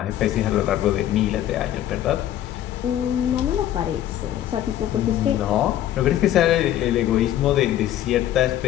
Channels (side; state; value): right; quieter; 12.1 dB